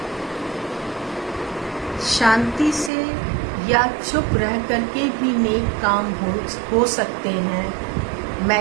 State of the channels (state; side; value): drops out; left; at 2.9 s